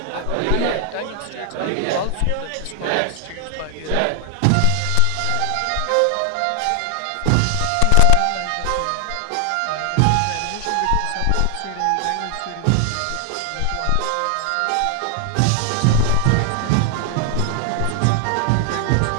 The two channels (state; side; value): different; both; correlation 0.00